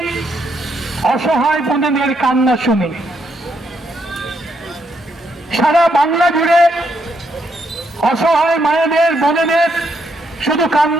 অসহায় বোনেদের কান্না শুনি। সারা বাংলা জুড়ে অসহায় মায়েদের বোনেদের শুধু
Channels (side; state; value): both; normal; correlation 0.76